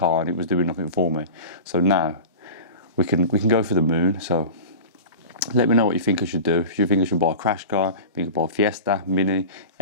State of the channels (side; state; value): both; inverted; correlation -0.33